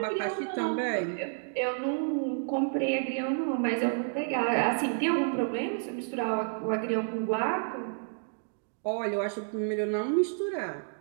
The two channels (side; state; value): left; silent; digital silence